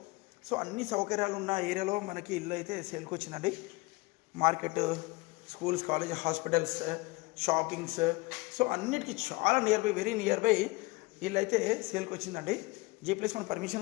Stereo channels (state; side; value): quieter; right; 23.4 dB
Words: సో అన్ని సౌకర్యాలు ఉన్న ఏరియాలో మనకి ఇల్లు అయితే సేల్కి వచ్చిందండి. Market, schools, college, hospitals, shoppings, so అన్నిటికీ చాలా near by, very near by ఇల్లు అయితే సేల్కి వచ్చిందండి. G+1